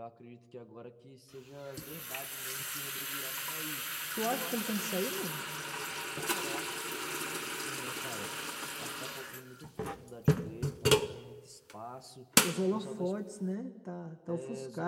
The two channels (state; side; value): identical; both; correlation 1.00